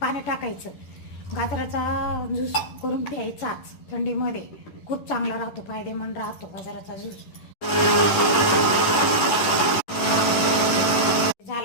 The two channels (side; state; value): right; late; 10 ms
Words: पाणी टाकायचं. गाजराचा ज्यूस करून प्यायचाच थंडीमध्ये. खूप चांगला राहतो, फायदेमंद राहतो गाजराचा ज्यूस.